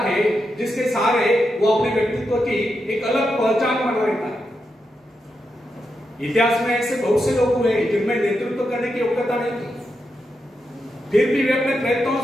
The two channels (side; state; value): both; normal; correlation 0.86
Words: जिसके सहारे वो अपने व्यक्तित्व की एक अलग पहचान बना रहता है. इतिहास में ऐसे बहुत से लोग हुए जिनमें नेतृत्व करने की योग्यता नहीं थी, फिर भी वे अपने प्रयत्नों